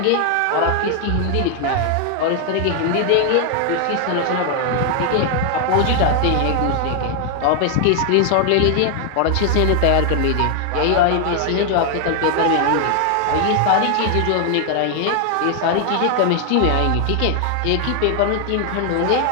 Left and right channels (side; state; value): both; different; correlation 0.00